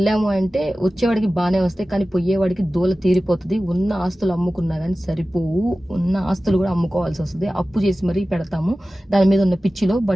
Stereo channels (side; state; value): both; normal; correlation 0.96